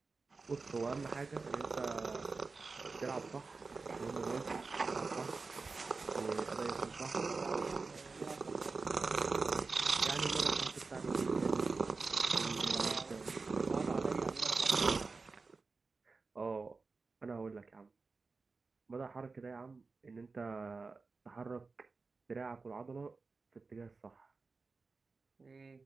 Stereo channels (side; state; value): left; quieter; 4.1 dB